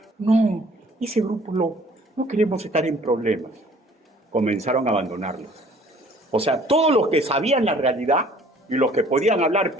No, ese grupo no queremos estar en problemas. Comenzaron a abandonarlos. O sea, todos los que sabían la realidad y los que podían hablar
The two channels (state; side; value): normal; both; correlation 0.55